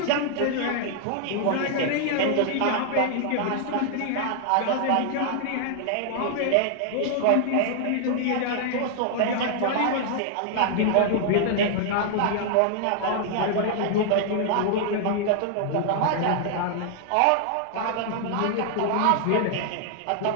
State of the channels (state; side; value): different; both; correlation 0.00